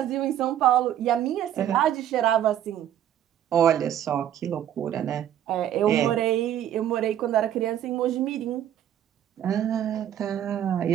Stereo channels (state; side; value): quieter; left; 10.9 dB